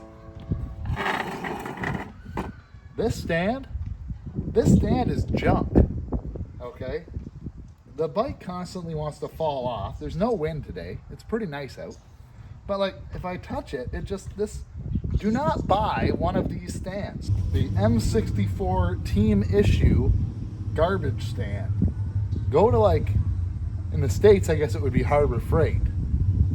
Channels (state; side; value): identical; both; correlation 1.00